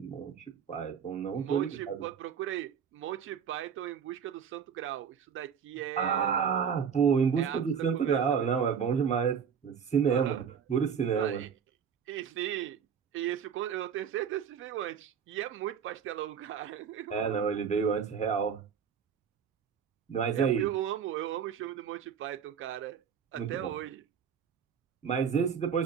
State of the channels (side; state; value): left; quieter; 7.2 dB